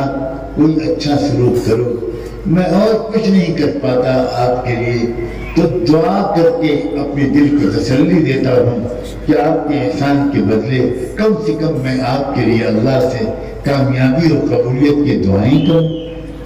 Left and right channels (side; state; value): both; identical; correlation 1.00